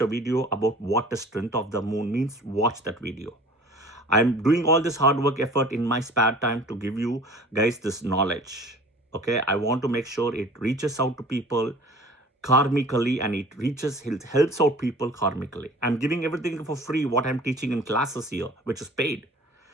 a video about what the strength of the moon means. Watch that video. I'm doing all this hard work effort in my spare time to give you guys this knowledge. Okay, I want to make sure it reaches out to people karmically, and it helps out people karmically. I'm giving everything for free, what I'm teaching in classes here, which is paid,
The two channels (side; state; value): both; normal; correlation 0.46